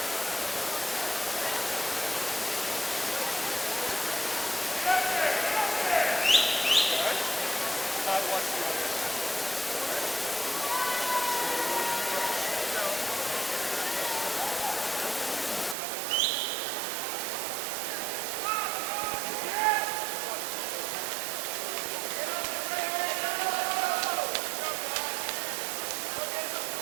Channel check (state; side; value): drops out; left; at 15.8 s